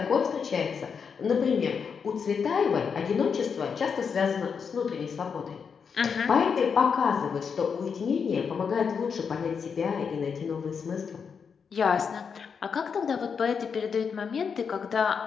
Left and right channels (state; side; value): quieter; right; 6.2 dB